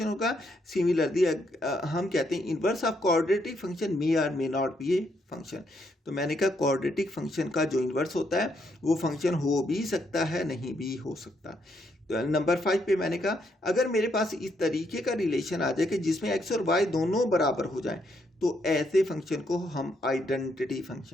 होगा. सिमिलरली हम कहते हैं इन्वर्स ऑफ क्वाड्रेटिक फंक्शन मे और may not be a function. तो मैंने कहा क्वाड्रेटिक फंक्शन का जो इन्वर्स होता है वो फंक्शन हो भी सकता है, नहीं भी हो सकता. तो नंबर 5 पे मैंने कहा अगर मेरे पास इस तरीके का रिलेशन आ जाए कि जिसमें x और y दोनों बराबर हो जाएं तो ऐसे फंक्शन को हम आइडेंटिटी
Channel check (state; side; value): normal; both; correlation 0.75